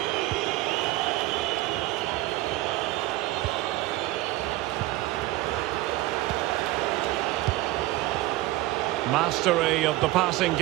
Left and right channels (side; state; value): left; quieter; 17.6 dB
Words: Mastery of the passing